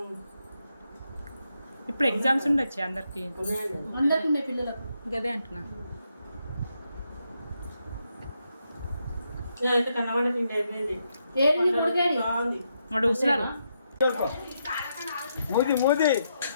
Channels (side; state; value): both; inverted; correlation -0.81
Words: ఇప్పుడు ఎగ్జామ్స్ ఉండొచ్చు అందరికి. అందరికి ఉండే పిల్లలకు గదే అంటున్నా. వాడు కూర్చున్నారు.